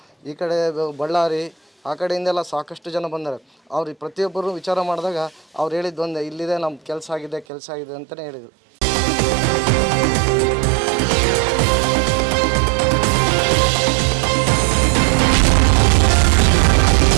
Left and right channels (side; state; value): left; drops out; at 7.5 s